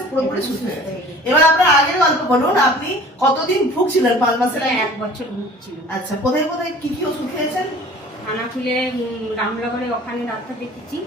পুরোপুরি সুস্থ হয়ে গেছে। এবার আপনার আগের গল্প বলুন, আপনি কতদিন ভুগছিলেন 5 মাসের আগে? 1 বছর ভুগছিল। আচ্ছা, কোথায় কোথায় কি কি ওষুধ খেয়েছেন? খানাকুলে রামনগরে ওখানে ডাক্তার দেখেছি,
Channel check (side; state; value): both; normal; correlation 0.46